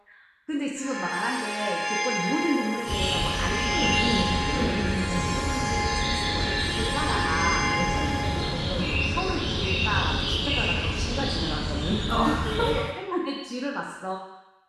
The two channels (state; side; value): identical; both; correlation 1.00